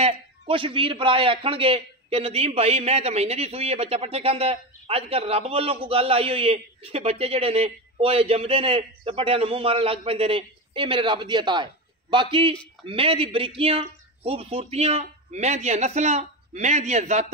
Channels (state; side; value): normal; both; correlation 0.19